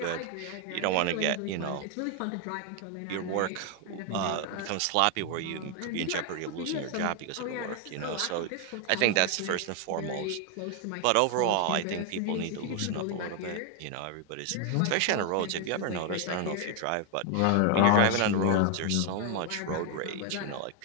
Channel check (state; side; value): different; both; correlation 0.01